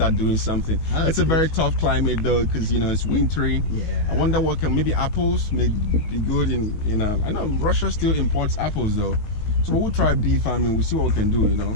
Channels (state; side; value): late; right; 19 ms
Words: doing something. It's a very tough climate though, because it's wintry. Yeah. I wonder what maybe apples may be good in I know Russia still imports apples though. So we'll try bee farming, we'll see what we can do,